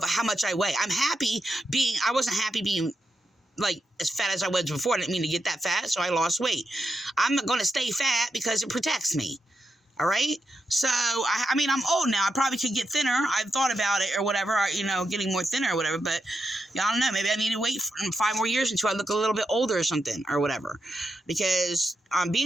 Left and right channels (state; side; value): normal; both; correlation 0.85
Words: how much I weigh? I wasn't happy being as fat as I was before. I didn't mean to get that fat, so I lost weight. I'm going to stay fat because it protects me. All right? So, I mean, I'm old now. I probably could get thinner. I've thought about it or whatever, getting more thinner or whatever. But, I don't know. Maybe I need to wait for 5 more years until I look a little bit older or something or whatever. Because